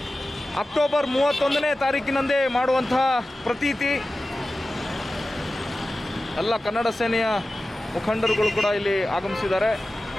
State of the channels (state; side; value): normal; both; correlation 0.95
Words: ಅಕ್ಟೋಬರ್ 31ನೇ ತಾರೀಕಿನಂದೇ ಮಾಡುವಂತಹ ಪ್ರತೀತಿ. ಎಲ್ಲ ಕನ್ನಡ ಸೇನೆಯ ಮುಖಂಡರುಗಳು ಕೂಡ ಇಲ್ಲಿ ಆಗಮಿಸಿದ್ದಾರೆ.